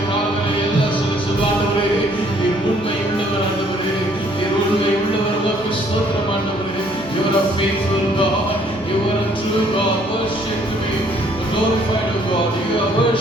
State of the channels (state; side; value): noise; right; hum, 24 dB below the sound